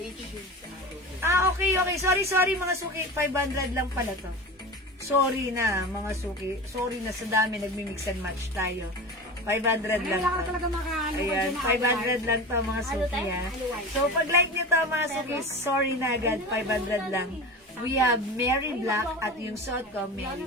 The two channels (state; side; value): normal; both; correlation 0.30